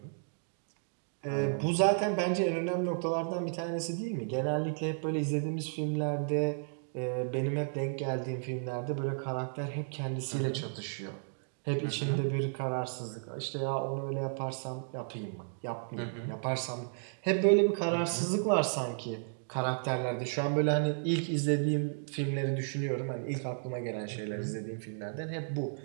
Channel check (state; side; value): silent; left; digital silence